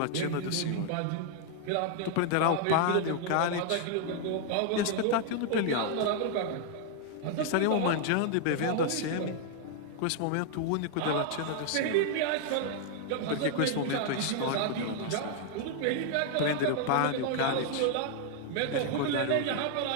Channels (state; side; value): different; both; correlation 0.00